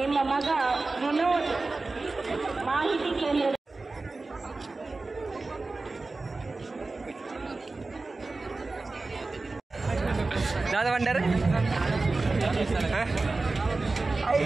ನಿಮ್ಮ ಮಗ ವಿನೋದ್ ಮಾಹಿತಿ ಕೇಂದ್ರದ दादा भंडार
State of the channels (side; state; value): left; quieter; 3.5 dB